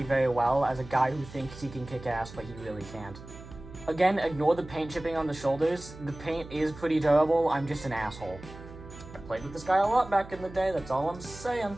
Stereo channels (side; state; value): right; noise; hum, 16 dB below the sound